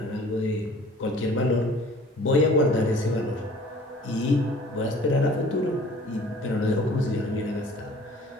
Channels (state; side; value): normal; both; correlation 0.50